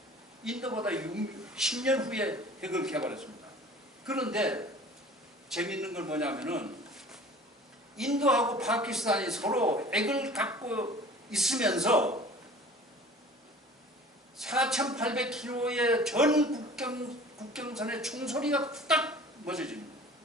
인도보다 10년 후에 핵을 개발했습니다. 그런데 재미있는 건 뭐냐면은 인도하고 파키스탄이 서로 핵을 갖고 있으면서 4,800km의 전 국경선의 총소리가 딱 멎어집니다.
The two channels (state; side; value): normal; both; correlation 0.45